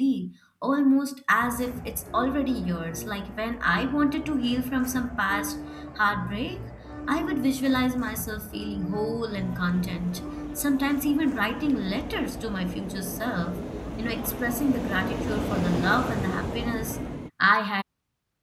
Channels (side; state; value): both; identical; correlation 1.00